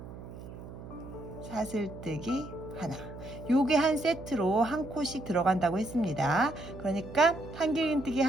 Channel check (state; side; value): noise; right; hum, 13 dB below the sound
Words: 사슬뜨기 하나, 요게 한 세트로 한 코씩 들어간다고 했습니다. 그러니까 한길 긴뜨기